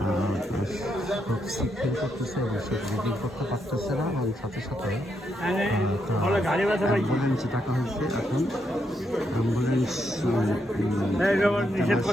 খুব সিক ফিল করতেছে এবং সে ব্রিদিং করতে পারতেছে না, এবং সাথে সাথে অ্যাম্বুলেন্স ডাকা হয়েছে। এখন অ্যাম্বুলেন্স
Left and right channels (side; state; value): both; normal; correlation 0.79